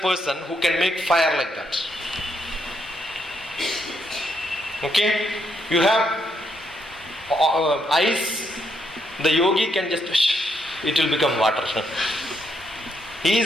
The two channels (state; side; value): normal; both; correlation 0.76